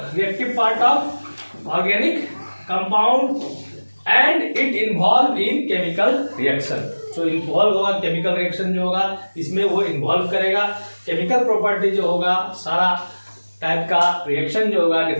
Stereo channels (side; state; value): both; inverted; correlation -1.00